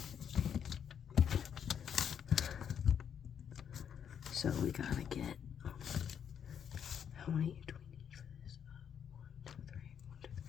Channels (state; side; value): quieter; right; 8.3 dB